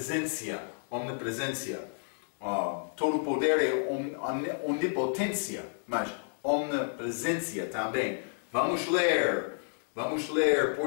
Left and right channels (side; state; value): right; silent; digital silence